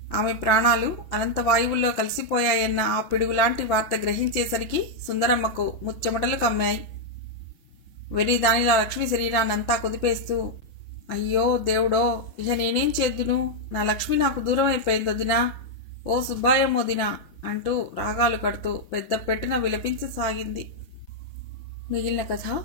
ఆమె ప్రాణాలు అనంత వాయువుల్లో కలిసిపోయాయన్న ఆ పిడుగులాంటి వార్త గ్రహించేసరికి సుందరమ్మకు ముచ్చెమటలు కమ్మాయి. వెర్రి దానిలా లక్ష్మి శరీరాన్నంతా కుదిపేస్తూ, అయ్యో దేవుడో, ఇక నేనేం చేద్దును? నా లక్ష్మి నాకు దూరం అయిపోయింది వదినా, ఓ సుబ్బాయమ్మ వదినా అంటూ రాగాలు కడుతూ పెద్ద పెట్టున విలపించసాగింది. మిగిలిన కథ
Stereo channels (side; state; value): right; late; 6.0 ms